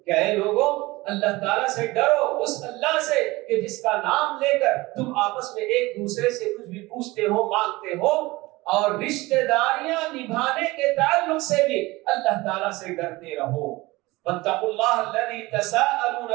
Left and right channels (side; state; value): left; quieter; 21.0 dB